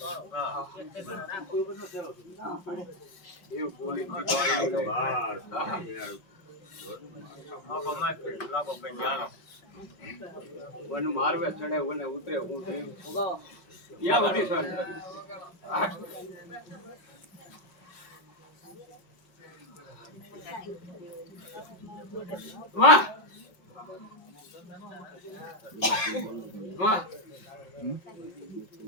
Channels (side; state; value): right; late; 5.4 ms